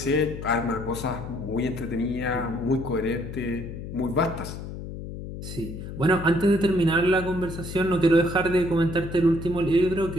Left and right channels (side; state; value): left; noise; hum, 9 dB below the sound